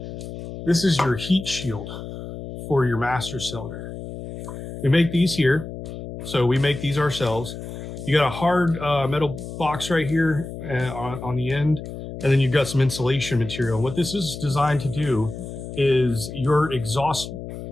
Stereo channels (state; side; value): noise; left; hum, 10 dB below the sound